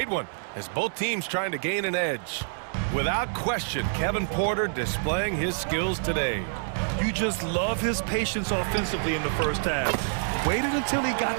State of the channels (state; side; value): silent; left; digital silence